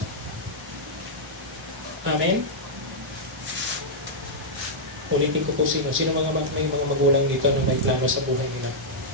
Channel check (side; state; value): both; normal; correlation -0.08